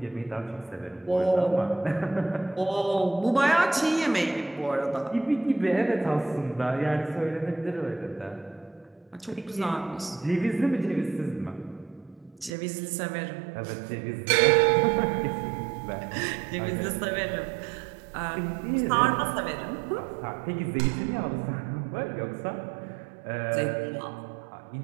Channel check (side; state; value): left; drops out; at 12.5 s